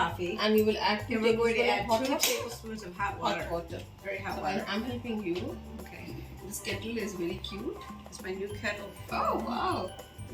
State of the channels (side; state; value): both; identical; correlation 1.00